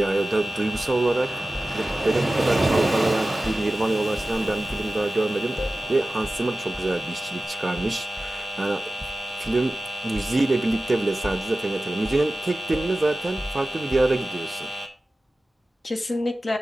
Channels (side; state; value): both; normal; correlation 0.96